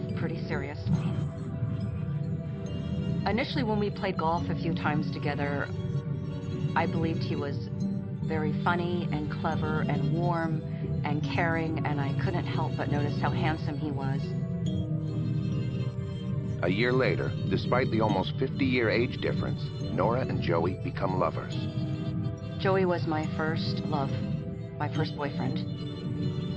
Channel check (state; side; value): identical; both; correlation 1.00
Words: pretty seriously. Initially, when we played golf a few times together, I believed he was very funny and clever and warm and caring, and I couldn't help but notice how handsome he was. A year later, despite the almost 50-year age difference, Nora and Joey become lovers. Joey was my first love, my first boyfriend.